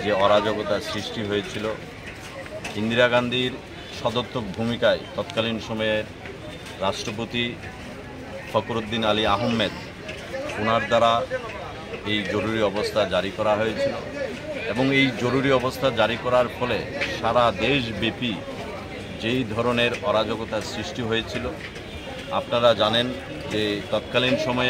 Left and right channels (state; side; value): identical; both; correlation 1.00